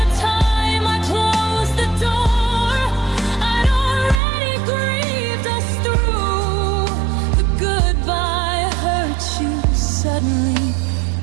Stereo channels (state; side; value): drops out; left; at 4.2 s